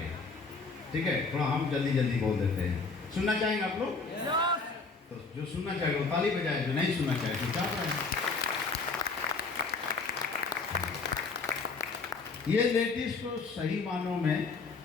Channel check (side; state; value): right; quieter; 4.3 dB